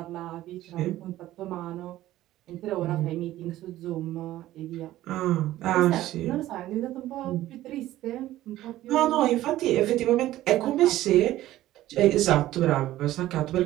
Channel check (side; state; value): left; quieter; 14.8 dB